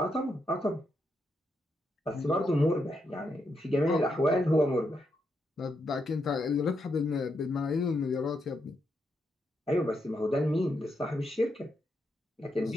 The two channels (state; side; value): normal; both; correlation 0.82